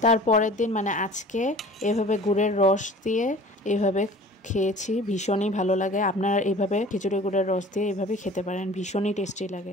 তারপরের দিন মানে আজকে এভাবে গুড়ের রস দিয়ে এভাবে খেয়েছি, ভীষণই ভালো লাগে। আপনারা এইভাবে খেজুরের গুড়ের রস দিয়ে এইভাবে খেতে পারেন, ভীষণই টেস্টি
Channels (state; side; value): normal; both; correlation 0.45